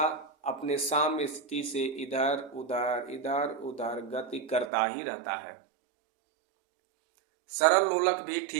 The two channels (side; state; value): left; drops out; at 4.7 s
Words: अपने साम्य स्थिति से इधर उधर गति करता ही रहता है। सरल लोलक भी